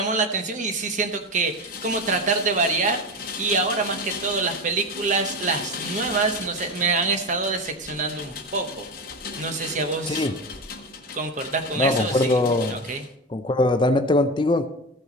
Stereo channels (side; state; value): both; normal; correlation 0.21